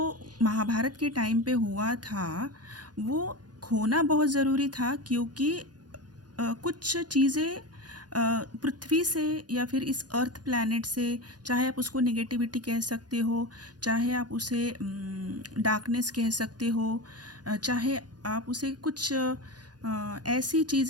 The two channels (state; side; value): late; left; 0.69 ms